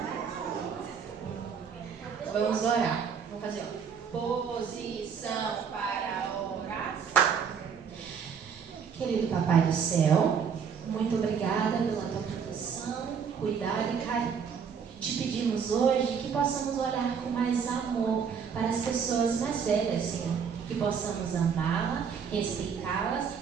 Vamos orar. Vamos fazer posição para orar. Querido Papai do Céu, muito obrigada pela tua proteção, cuidado e carinho. Te pedimos hoje que possamos olhar com mais amor para as pessoas mais velhas, Senhor. Que possamos amá-las, respeitá-las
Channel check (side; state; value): left; quieter; 6.7 dB